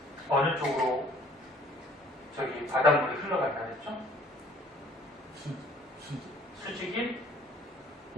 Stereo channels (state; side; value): normal; both; correlation 0.56